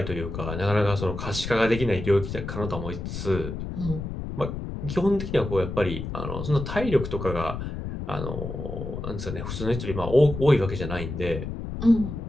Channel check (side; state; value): left; noise; rumble, 6 dB below the sound